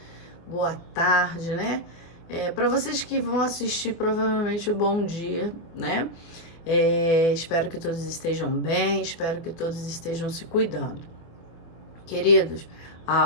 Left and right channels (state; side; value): late; right; 24 ms